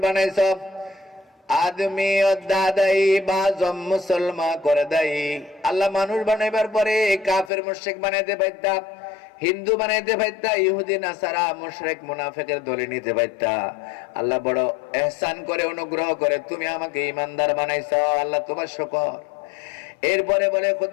বানাইছো। আদমি দাদাই বাজম মুসলমা করে দেই। আল্লাহ মানুষ বানাইবার পরে কাফের মুশরিক বানাইতে পারতা, হিন্দু বানাইতে পারতা, ইহুদি নাসারা মুশরিক মুনাফিকের দলে নিতে পারতা। আল্লাহ বড় ইহসান করে, অনুগ্রহ করে তুমি আমাকে ঈমানদার বানাইছো। আল্লাহ তোমার শুকর। এরপরে বলে,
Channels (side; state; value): right; drops out; at 7.5 s